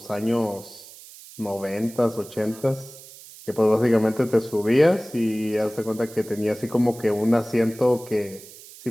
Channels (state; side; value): noise; right; hiss, 18 dB below the sound